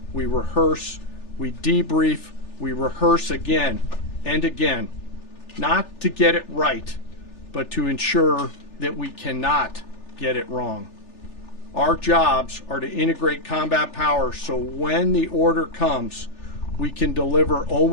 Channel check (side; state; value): right; late; 3.4 ms